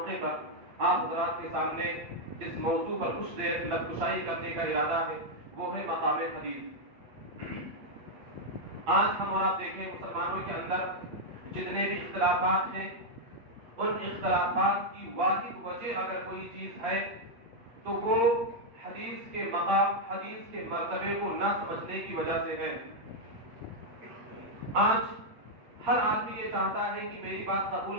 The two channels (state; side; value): late; left; 8.7 ms